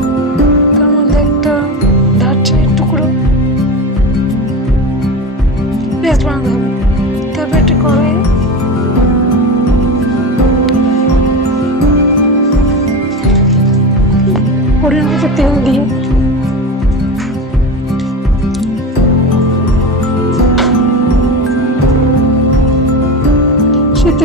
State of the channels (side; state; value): both; normal; correlation 0.24